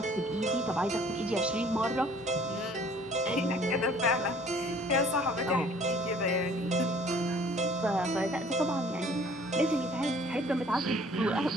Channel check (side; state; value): both; normal; correlation 0.54